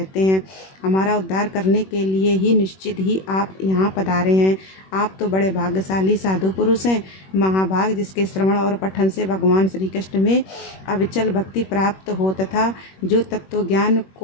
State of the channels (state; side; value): late; right; 21 ms